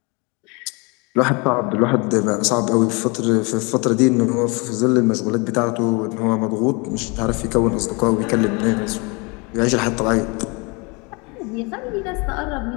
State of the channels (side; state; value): right; quieter; 29.6 dB